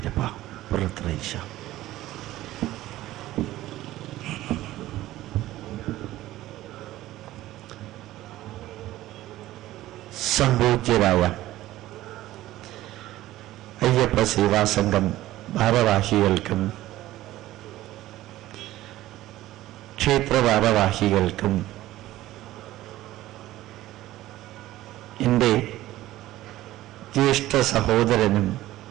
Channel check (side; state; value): left; quieter; 15.5 dB